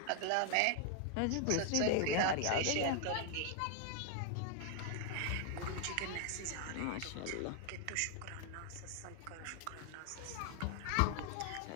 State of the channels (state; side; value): different; both; correlation 0.00